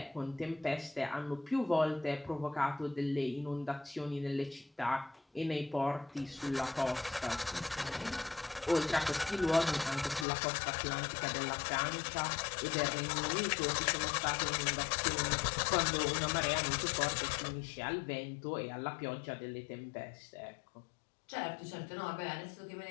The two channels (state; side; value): drops out; right; at 10.2 s